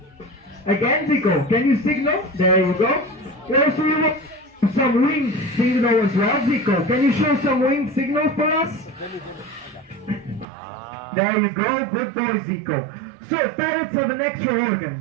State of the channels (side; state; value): left; drops out; at 10.5 s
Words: Again, Zico, can you signal? There you go. Also, you want some wing signal as well, Zico. Can you show some wing signal for us? There you go. Good boy, Zico. So parrots have an extra